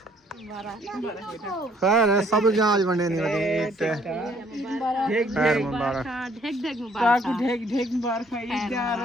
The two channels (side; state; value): both; normal; correlation 0.63